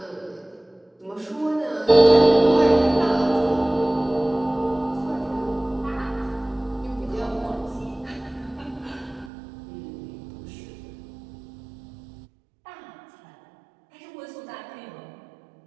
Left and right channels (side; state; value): left; drops out; at 9.3 s